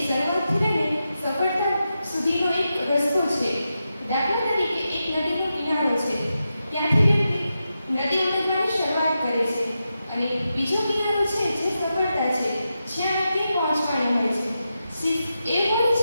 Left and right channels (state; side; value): inverted; both; correlation -0.89